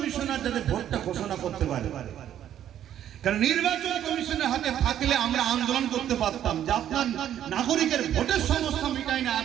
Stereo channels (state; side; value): quieter; left; 10.8 dB